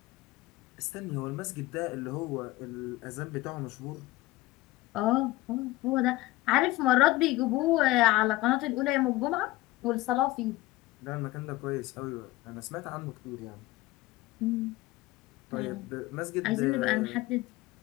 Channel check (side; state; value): right; quieter; 18.5 dB